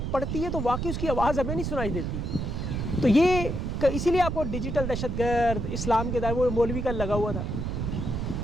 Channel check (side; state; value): right; noise; rumble, 2 dB below the sound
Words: پڑتی ہے تو واقعی اس کی آواز ہمیں نہیں سنائی دیتی. تو یہ اسی لیے آپ کو ڈیجیٹل دہشت گرد اسلام کے دائر وہ مولوی کا لگا ہوا تھا.